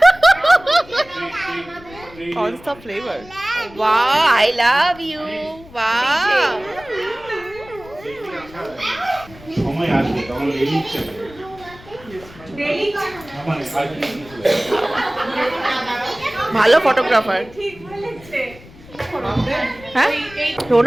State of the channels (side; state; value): left; noise; rumble, 21 dB below the sound